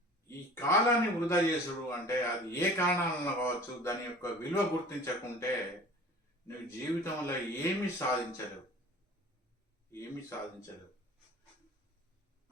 ఈ కాలాన్ని వృధా చేసుడు అంటే అది ఏ కారణాలలో కావచ్చు, దాని యొక్క విలువ గుర్తించకుంటే నువ్వు జీవితంలో ఏమీ సాధించలేవు. ఏమీ సాధించలేవు.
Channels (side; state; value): both; normal; correlation 0.44